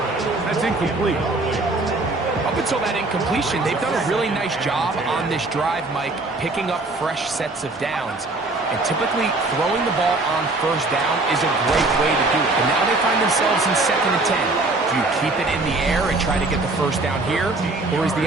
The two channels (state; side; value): quieter; left; 3.1 dB